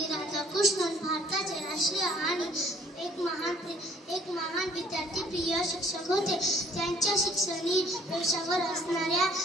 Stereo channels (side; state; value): both; normal; correlation 0.59